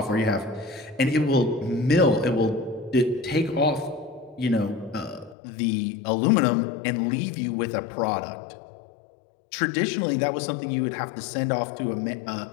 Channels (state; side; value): drops out; right; at 5.4 s